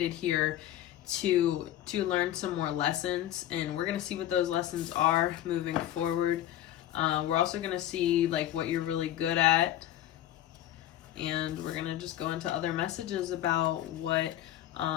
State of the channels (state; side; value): quieter; right; 12.7 dB